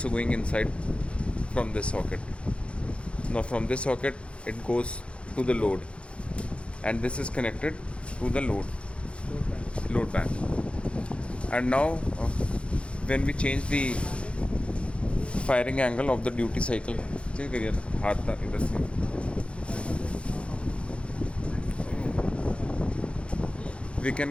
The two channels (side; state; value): right; late; 0.059 ms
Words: going inside from this socket. Now from this socket it goes to the load, and this is connected to the load bank. And now when we change the firing angle of the duty cycle, we